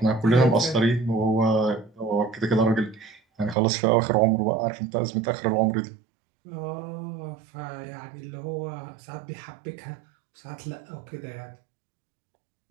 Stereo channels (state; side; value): drops out; left; at 3.6 s